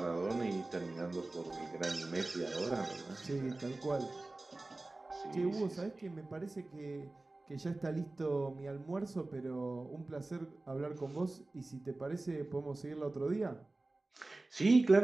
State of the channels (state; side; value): quieter; left; 3.0 dB